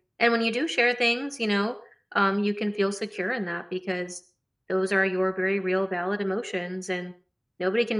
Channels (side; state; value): both; identical; correlation 1.00